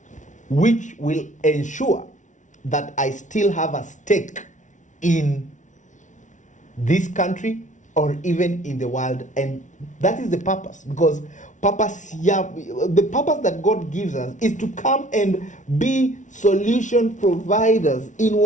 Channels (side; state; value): right; late; 0.36 ms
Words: which will ensure that I still have a stake in this country or even in the world. And that is the purpose, because the purpose that God gives us is to come and be solution providers in